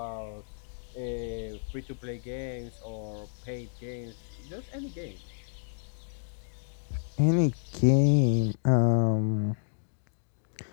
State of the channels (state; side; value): silent; right; digital silence